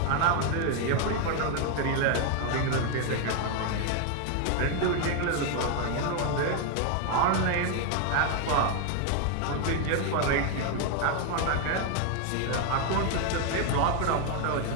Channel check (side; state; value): both; different; correlation 0.01